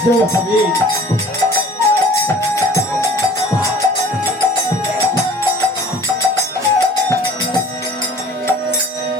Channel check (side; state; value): both; normal; correlation 0.48